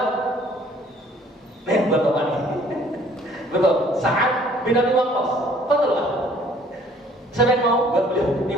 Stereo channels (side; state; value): both; normal; correlation 0.57